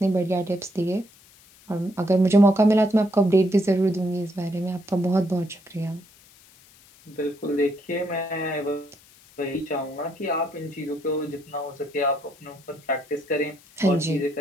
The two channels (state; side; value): noise; left; hiss, 26 dB below the sound